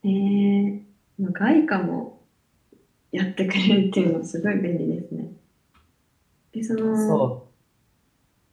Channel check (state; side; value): identical; both; correlation 1.00